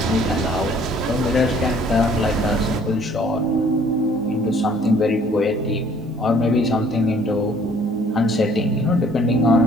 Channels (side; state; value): both; normal; correlation 0.57